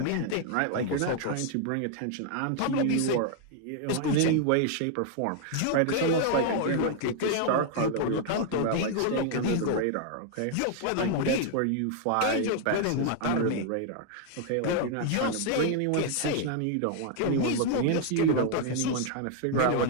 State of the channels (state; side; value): different; both; correlation 0.00